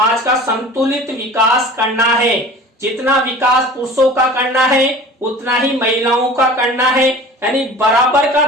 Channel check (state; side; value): normal; both; correlation 0.41